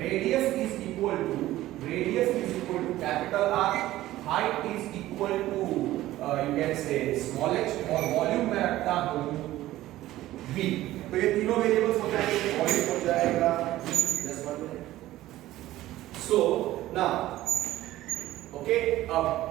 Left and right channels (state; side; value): quieter; left; 15.5 dB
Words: radius is equal to capital R, height is equal to you can say small h और वॉल्यूम में रखता हूं v. तो ये तीनों वेरिएबल्स हो जाएंगे, वॉल्यूम हो जाएगा just 1 minute. So now okay, अब